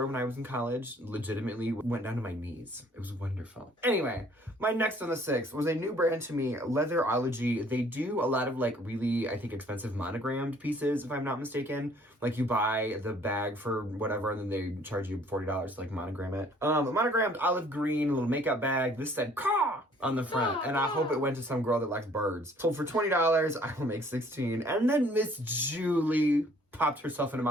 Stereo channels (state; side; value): normal; both; correlation 0.58